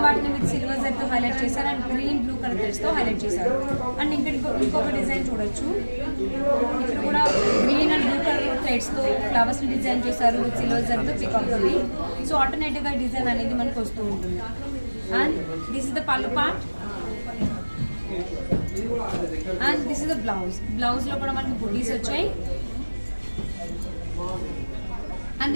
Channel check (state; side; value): inverted; both; correlation -1.00